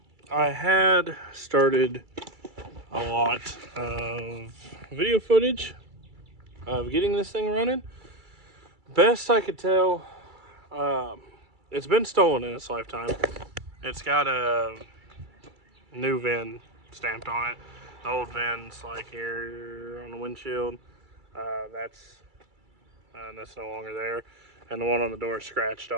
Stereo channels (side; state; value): left; late; 2.3 ms